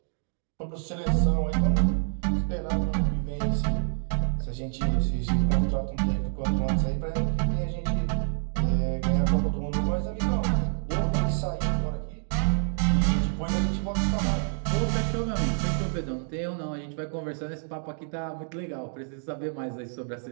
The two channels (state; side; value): silent; left; digital silence